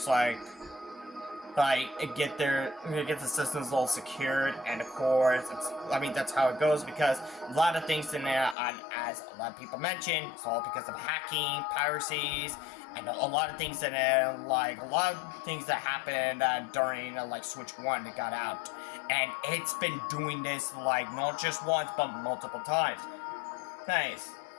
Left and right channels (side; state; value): right; drops out; at 8.6 s